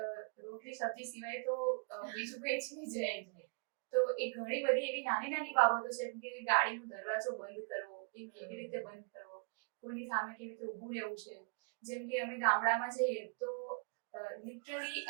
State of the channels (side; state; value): left; quieter; 39.2 dB